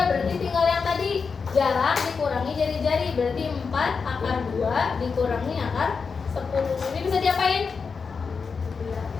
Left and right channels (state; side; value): quieter; right; 5.3 dB